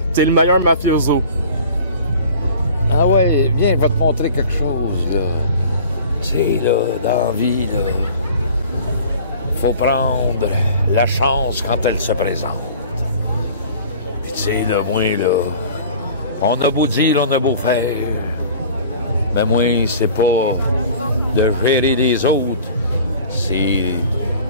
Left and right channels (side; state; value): both; inverted; correlation -0.45